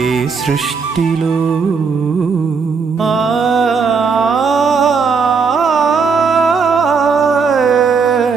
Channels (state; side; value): quieter; left; 5.3 dB